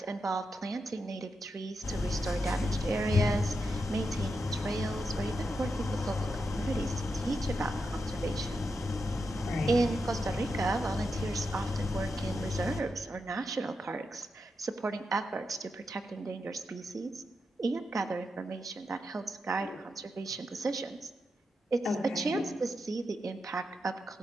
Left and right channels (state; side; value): normal; both; correlation 0.86